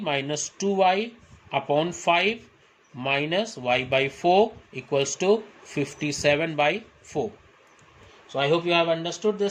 minus 2y upon 5 minus y by 4 equals to 57 by 4. So I hope you have understood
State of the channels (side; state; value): both; identical; correlation 1.00